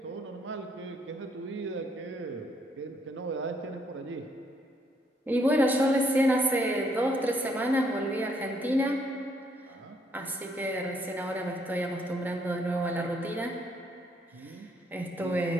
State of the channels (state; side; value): normal; both; correlation 0.70